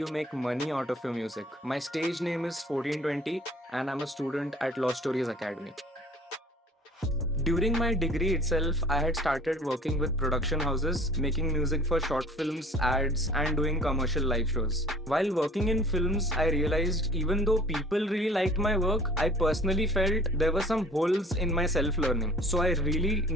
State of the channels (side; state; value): both; normal; correlation 0.49